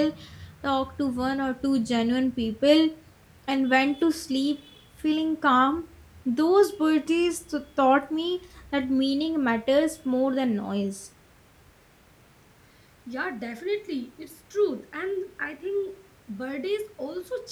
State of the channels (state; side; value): identical; both; correlation 1.00